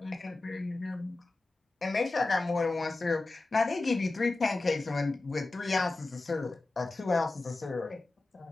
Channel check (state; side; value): quieter; right; 3.2 dB